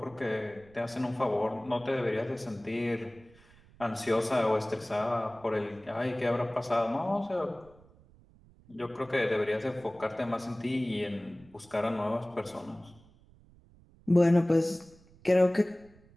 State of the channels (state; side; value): noise; right; rumble, 26 dB below the sound